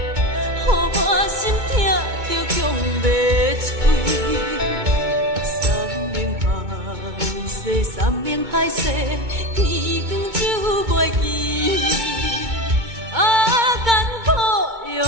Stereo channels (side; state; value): left; late; 2.2 ms